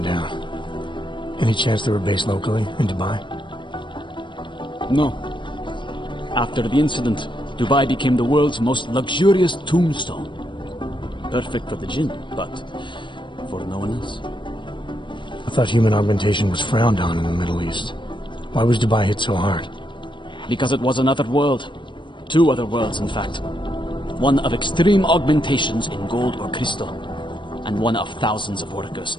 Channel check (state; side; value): late; right; 0.23 ms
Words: down. Any chance they were based locally, in Dubai? No. After the incident, Dubai became the world's most luxurious tombstone. Perfect for the Jinn, but for no one else. I thought human augmentation was frowned on in the Middle East. Why was Dubai hit so hard? Because it was another world. Two other worlds, in fact. One of extreme augmentations in gold or crystal, and one of thousands of workers